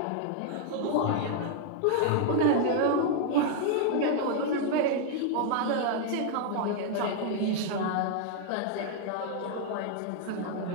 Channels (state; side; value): different; both; correlation 0.00